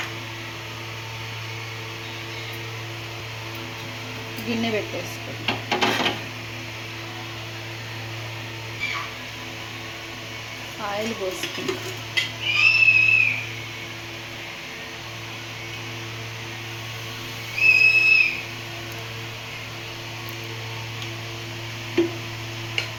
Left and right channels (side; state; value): both; identical; correlation 1.00